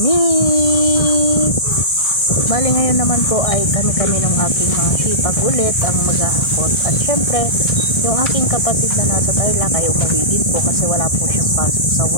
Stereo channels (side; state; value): right; late; 1.6 ms